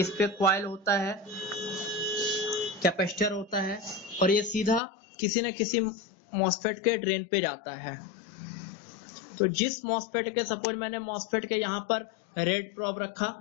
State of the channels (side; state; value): right; drops out; at 4.8 s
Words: पे कॉइल होता है, कैपेसिटर होता है और ये सीधा किसी न किसी मॉसफेट के ड्रेन पे जाता है। तो जिस मॉसफेट के, सपोज मैंने मॉसफेट के यहाँ पर रेड प्रोब रखा,